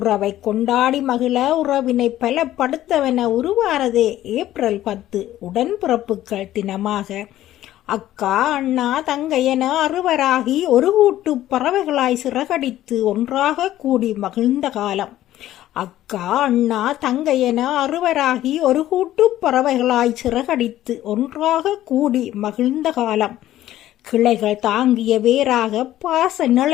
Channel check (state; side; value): quieter; right; 13.6 dB